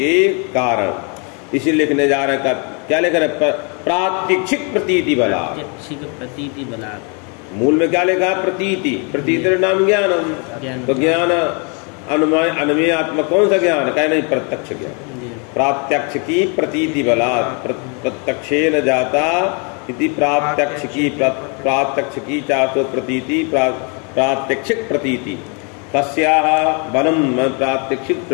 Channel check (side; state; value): right; quieter; 35.5 dB